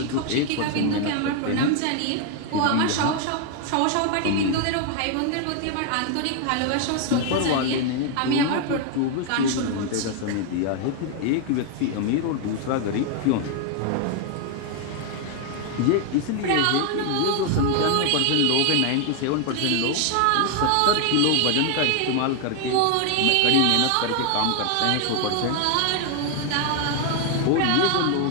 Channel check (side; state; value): both; different; correlation 0.00